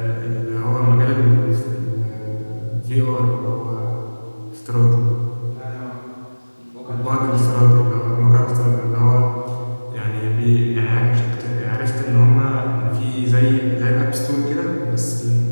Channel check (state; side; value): inverted; both; correlation -1.00